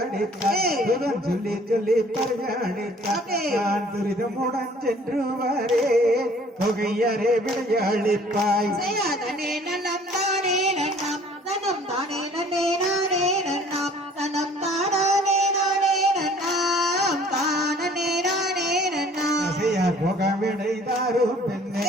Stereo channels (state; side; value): normal; both; correlation 0.54